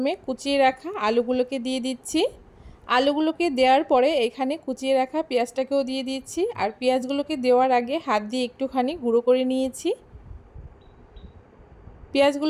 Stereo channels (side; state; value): both; identical; correlation 1.00